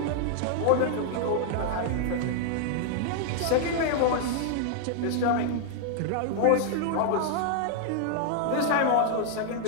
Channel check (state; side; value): different; both; correlation 0.00